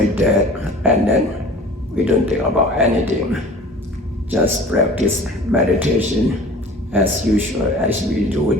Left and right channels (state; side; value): normal; both; correlation 0.44